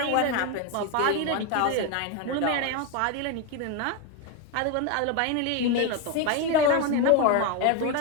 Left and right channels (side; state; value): both; different; correlation 0.02